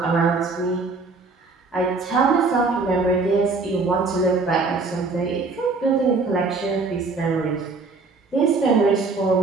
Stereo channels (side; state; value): left; quieter; 4.0 dB